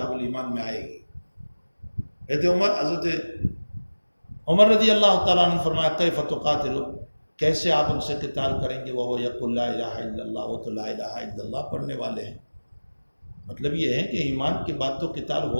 الایمان میں آئے گی، حضرت عمر رضی اللہ تعالیٰ عنہ نے فرمایا کیف تقاتل، کیسے آپ ان سے قتال کریں گے، وہ یقول لا الہ الا اللہ، وہ تو لا الہ الا اللہ پڑھنے والے ہیں۔ مطلب یہ ہے کہ ایمان کے بعد تو قتال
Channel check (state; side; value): inverted; both; correlation -1.00